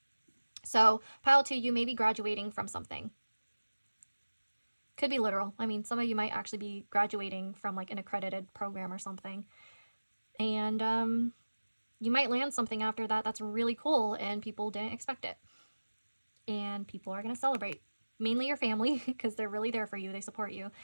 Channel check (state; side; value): inverted; both; correlation -1.00